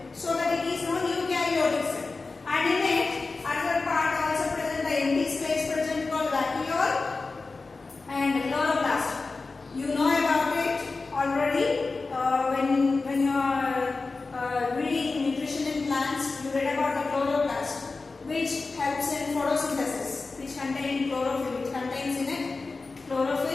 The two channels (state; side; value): quieter; right; 3.9 dB